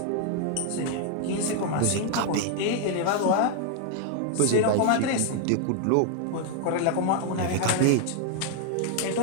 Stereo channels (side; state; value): both; different; correlation 0.00